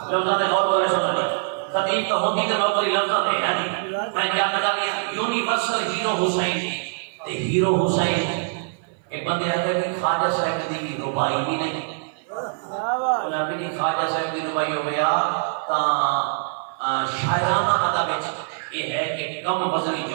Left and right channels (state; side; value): silent; left; 55 dB below the other